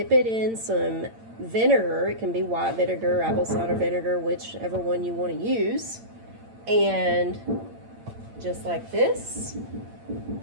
it in some vinegar. It can be white vinegar, apple cider vinegar, whichever one you want to use. And just like this,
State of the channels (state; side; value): late; left; 8.8 ms